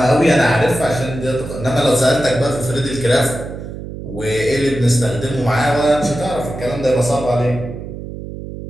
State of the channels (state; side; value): noise; right; hum, 10 dB below the sound